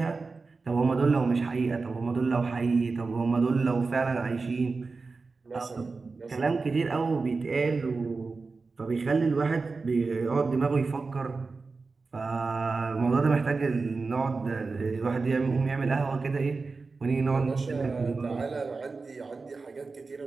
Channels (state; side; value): quieter; left; 4.1 dB